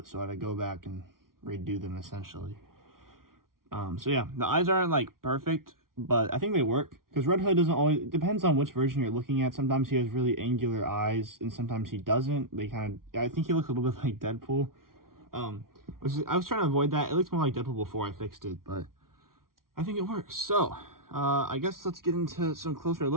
so I had to go back and redo them essentially. So yeah, the eyes aren't like perfect, but I think they work because Red Hood doesn't always, it depends on which version you're looking at. Sometimes he has really angular eyes and sometimes he doesn't. I think he looks a little bit like Deadpool. I was trying to avoid that. It looked more like Deadpool before I fixed it, but I think it works. So, I guess let's get into some closer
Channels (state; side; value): late; left; 0.92 ms